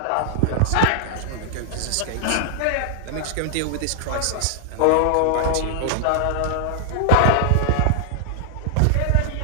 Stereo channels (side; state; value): both; different; correlation 0.00